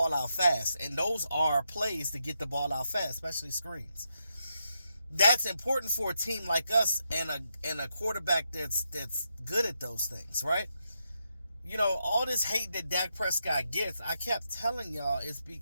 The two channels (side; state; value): both; inverted; correlation -0.83